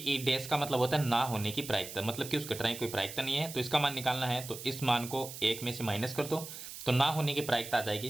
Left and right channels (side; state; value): right; noise; hiss, 11 dB below the sound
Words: डैश का मतलब होता है ना होने की प्रायिकता, मतलब कि उस घटना की कोई प्रायिकता नहीं है तो इसका मान निकालना है, तो इस मान को 1 में से माइनस कर दो तो ना होने की प्रायिकता आ